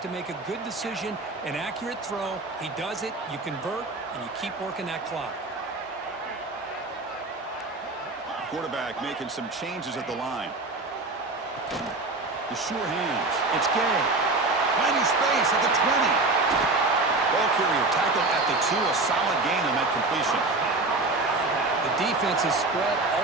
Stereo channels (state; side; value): quieter; left; 3.2 dB